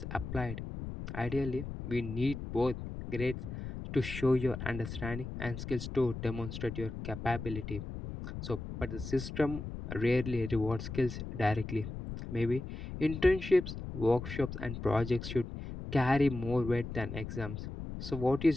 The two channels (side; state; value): left; noise; rumble, 7 dB below the sound